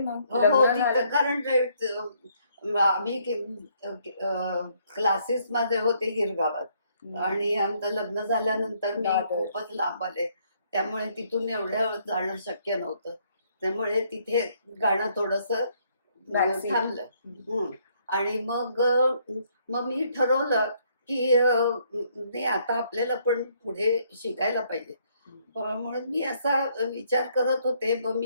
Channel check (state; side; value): inverted; both; correlation -0.68